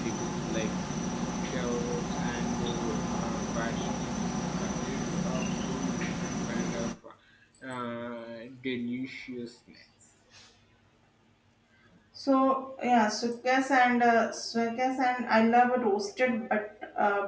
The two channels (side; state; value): both; identical; correlation 1.00